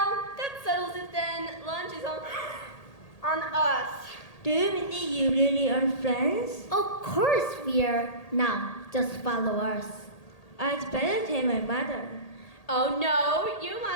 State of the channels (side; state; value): right; late; 1.8 ms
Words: that settles it then. Lunch is on us. Do you mean that you really are friends? Of course we are. Now, just follow us. I'd better tell my mother. Oh no, you